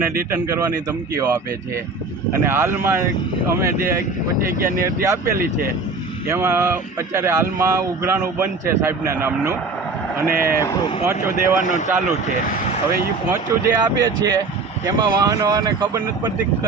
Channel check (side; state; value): left; quieter; 3.9 dB